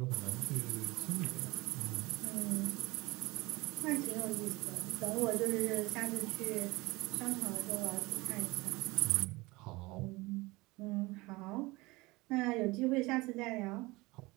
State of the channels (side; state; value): left; quieter; 22.5 dB